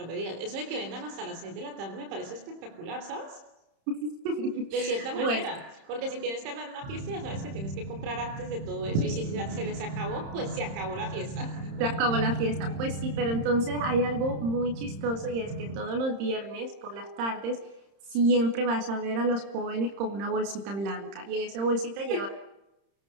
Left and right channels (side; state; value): left; late; 31 ms